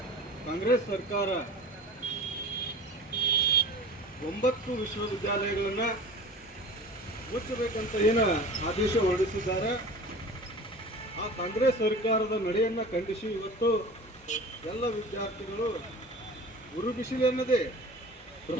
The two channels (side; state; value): both; normal; correlation 0.38